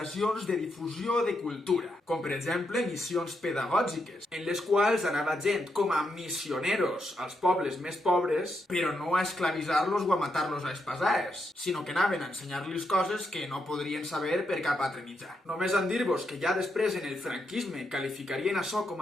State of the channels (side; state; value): both; normal; correlation 0.82